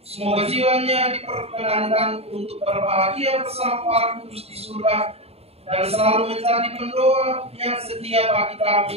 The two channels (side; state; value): left; late; 0.29 ms